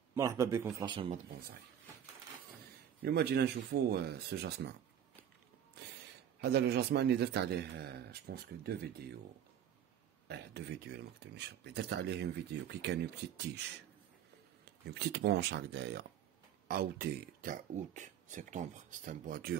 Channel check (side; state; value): left; quieter; 9.7 dB